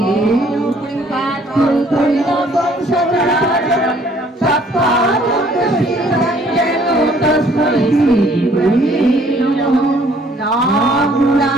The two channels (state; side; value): normal; both; correlation 0.60